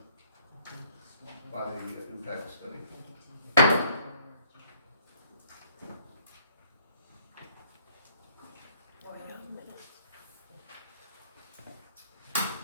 by the impact study.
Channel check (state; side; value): inverted; both; correlation -0.62